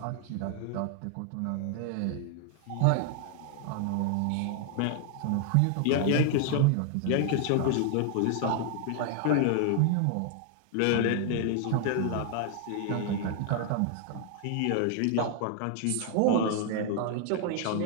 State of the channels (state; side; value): different; both; correlation 0.00